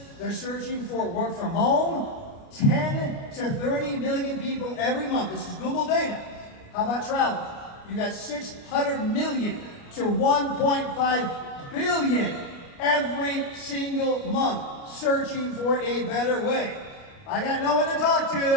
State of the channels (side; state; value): right; late; 29 ms